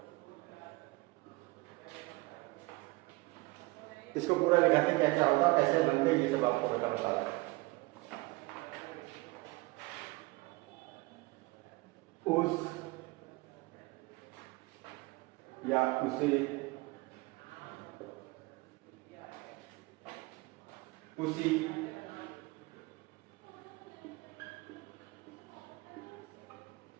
इसको पूरा लिखाते हैं क्या क्या होगा, कैसे बनते हैं, ये सब आपको बता रहा है। उस या उसे, उसी,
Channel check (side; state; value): left; quieter; 23.3 dB